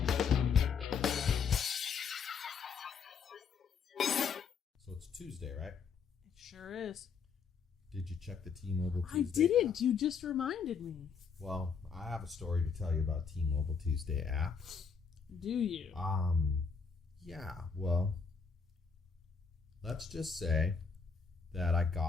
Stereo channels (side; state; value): right; quieter; 5.9 dB